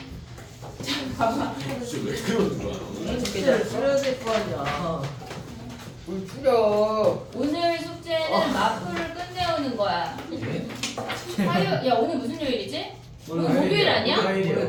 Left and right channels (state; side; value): identical; both; correlation 1.00